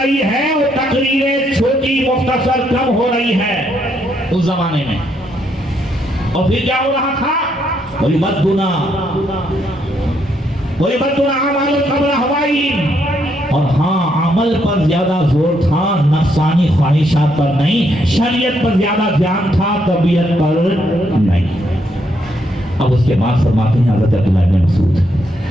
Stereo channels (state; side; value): normal; both; correlation 0.75